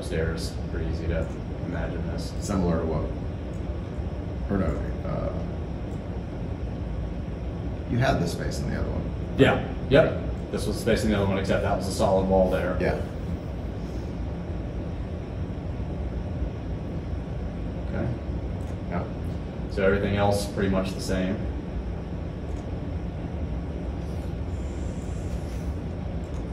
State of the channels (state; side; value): identical; both; correlation 1.00